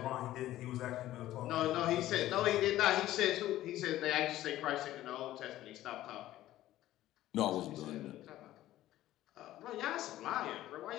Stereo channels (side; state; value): right; quieter; 14.5 dB